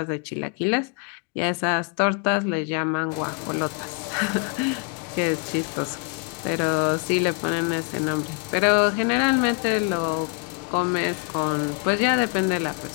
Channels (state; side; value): quieter; right; 34.2 dB